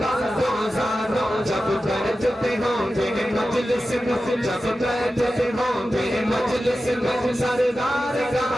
दो जानो। जब बैठते होंगे मजलिस में, जब बैठते होंगे मजलिस में, सरदार का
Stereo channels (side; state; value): both; normal; correlation 0.93